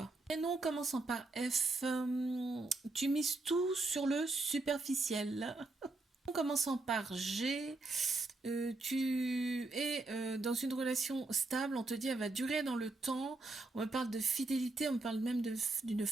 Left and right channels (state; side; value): quieter; left; 3.2 dB